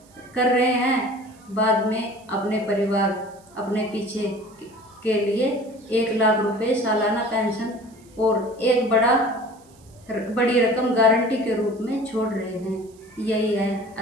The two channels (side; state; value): right; noise; hiss, 29 dB below the sound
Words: कर रहे हैं, बाद में अपने परिवार, अपने पीछे के लिए 1 लाख रुपये सालाना पेंशन और एक बड़ी रकम गारंटी के रूप में छोड़ रहे हैं। यही है